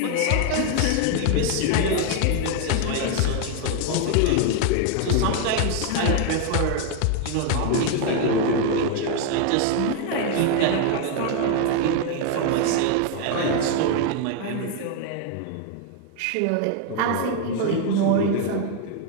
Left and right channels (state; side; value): different; both; correlation 0.01